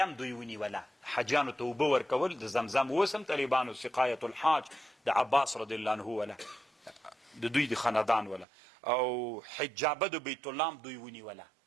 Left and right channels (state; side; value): drops out; left; at 8.5 s